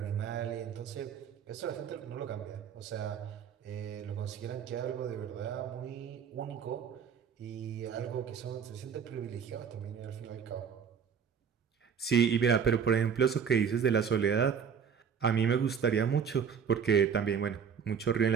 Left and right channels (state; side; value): quieter; left; 7.1 dB